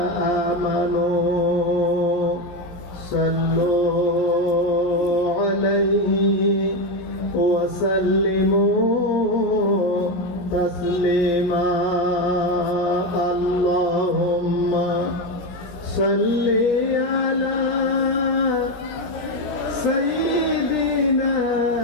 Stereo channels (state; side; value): late; right; 17 ms